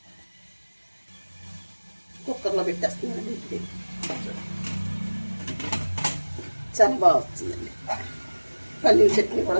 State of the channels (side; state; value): both; inverted; correlation -1.00